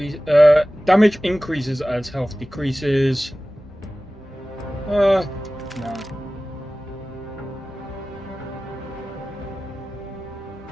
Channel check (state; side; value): normal; both; correlation 0.97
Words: Damage increases as health decreases. No.